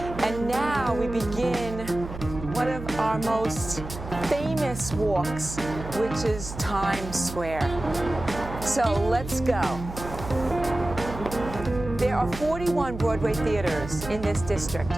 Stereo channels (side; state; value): right; noise; hum, 10 dB below the sound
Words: and now we begin one of our most famous walks, which is Times Square. So let's go. There are 41 Broadway theaters in this district.